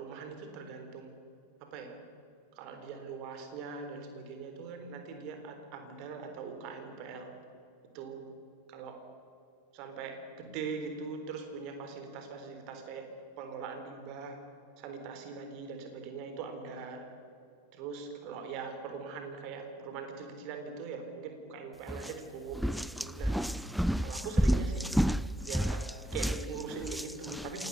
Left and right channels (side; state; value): both; normal; correlation 0.72